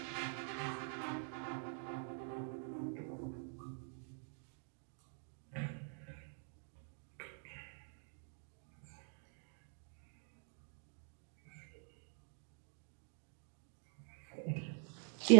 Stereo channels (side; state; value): left; quieter; 39.1 dB